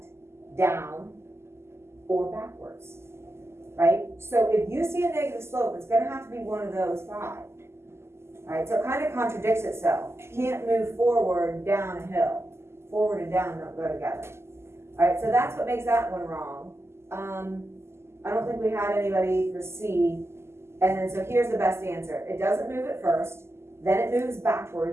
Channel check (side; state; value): left; late; 0.12 ms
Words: down, or backwards, right? So if you see a negative slope, it's gonna have to be one of those 5, right? So it kind of contradicts itself. You can't move forward down a hill. Forward and down don't go together. All right, so that's what makes that one wrong. I don't think we had anybody for C. And then, so here's the best answer. It doesn't move at first, then it moves